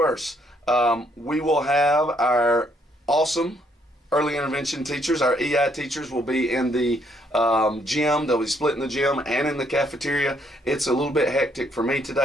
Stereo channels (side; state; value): both; normal; correlation 0.70